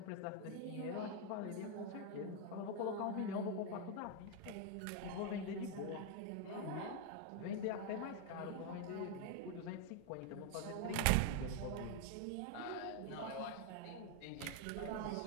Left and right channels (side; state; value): both; different; correlation 0.01